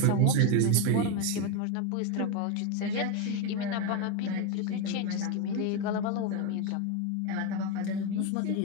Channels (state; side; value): different; both; correlation 0.03